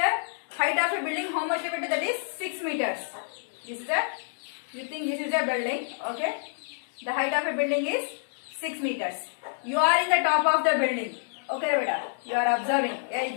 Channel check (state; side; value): silent; right; digital silence